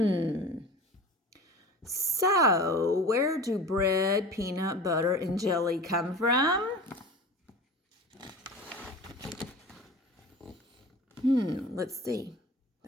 So, where do bread, peanut butter, and jelly come from? Let's see.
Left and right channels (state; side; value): normal; both; correlation 0.36